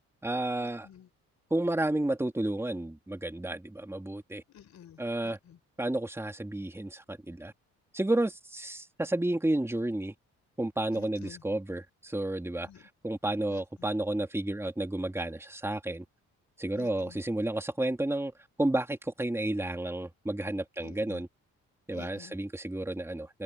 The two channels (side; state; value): both; normal; correlation 0.90